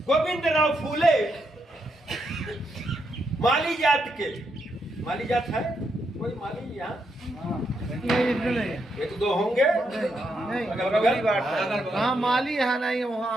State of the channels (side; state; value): both; normal; correlation 0.80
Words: गोविंदराव फूले माली जात के, माली जात है कोई माली यहाँ? एक दो होंगे हाँ, माली है नहीं